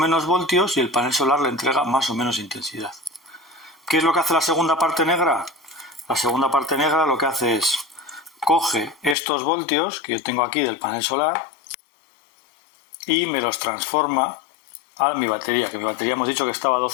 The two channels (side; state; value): right; drops out; at 9.2 s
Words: voltios y el panel solar le entrega más o menos intensidad. ¿Qué es lo que hace la segunda parte negra? La segunda parte negra lo que hace es coge estos voltios que yo tengo aquí del panel solar y me los transforma a mi batería, que mi batería hemos dicho que estaba a